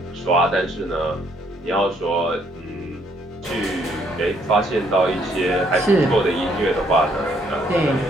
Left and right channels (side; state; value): both; normal; correlation 0.68